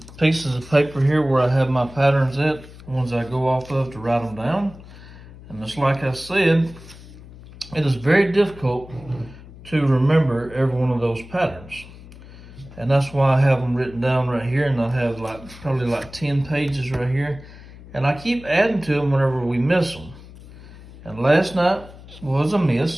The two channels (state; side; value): noise; left; hum, 18 dB below the sound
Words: of paper here where I have my patterns at, ones I go off of to write them down. And just like I said, it is very difficult to remember every one of those patterns. And that's why I have them written down right here, and I have probably like 10 pages right here. And I keep adding to them whenever we miss them. And last night was a